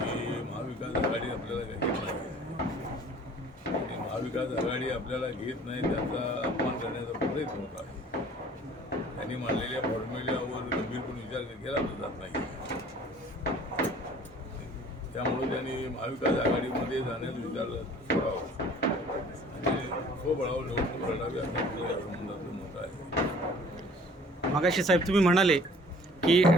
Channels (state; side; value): normal; both; correlation 0.51